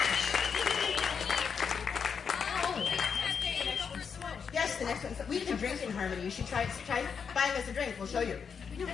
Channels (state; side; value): quieter; right; 6.5 dB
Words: Yes, the next one. We can drink in harmony. You should try buying us a drink. We'll show you. We don't